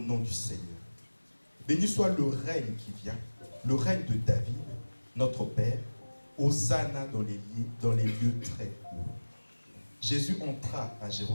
du Seigneur. Béni soit le règne qui vient, le règne de David, notre Père. Hosanna dans les lieux très hauts. Jésus entra à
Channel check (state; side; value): inverted; both; correlation -1.00